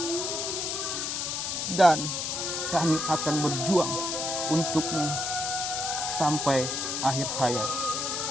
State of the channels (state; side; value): noise; left; hiss, 2 dB below the sound